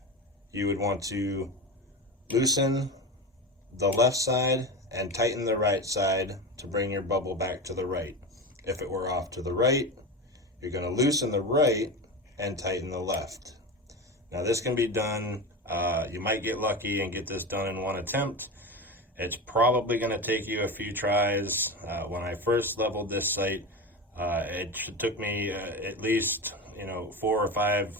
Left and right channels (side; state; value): both; normal; correlation 0.23